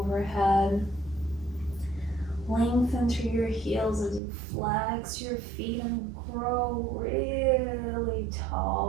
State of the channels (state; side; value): drops out; left; at 4.2 s